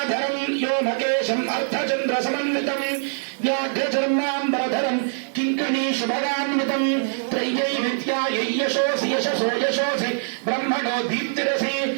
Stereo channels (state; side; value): silent; left; digital silence